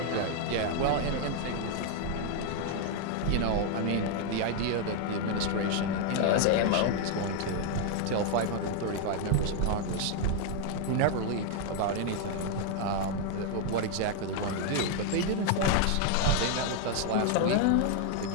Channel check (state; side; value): different; both; correlation 0.00